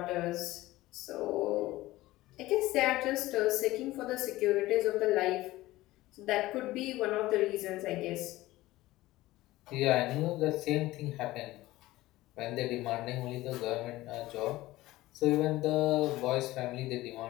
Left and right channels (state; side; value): quieter; right; 17.6 dB